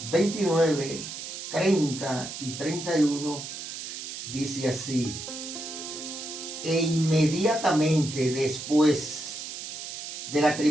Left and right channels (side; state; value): right; noise; hiss, 8 dB below the sound